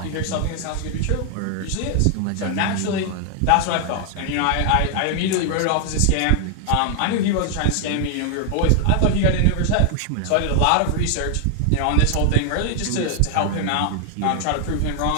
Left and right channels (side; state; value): both; different; correlation 0.00